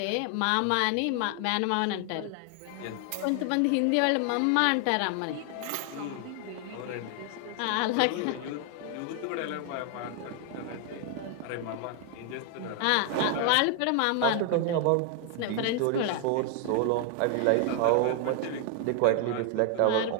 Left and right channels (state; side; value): different; both; correlation 0.00